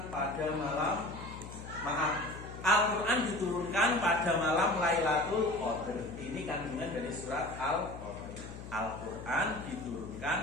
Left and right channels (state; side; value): noise; left; hum, 12 dB below the sound